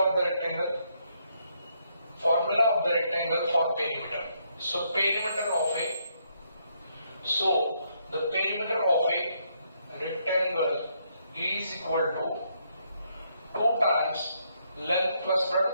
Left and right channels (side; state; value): both; inverted; correlation -0.75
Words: of the rectangle? Formula of the rectangle for perimeter. So the perimeter of a rectangle is equal to 2 times length plus